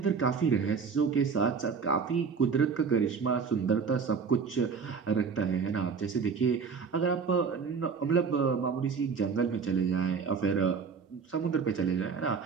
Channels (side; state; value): left; quieter; 5.6 dB